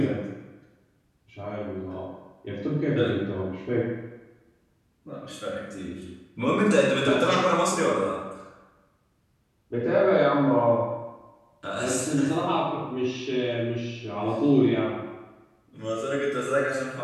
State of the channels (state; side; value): identical; both; correlation 1.00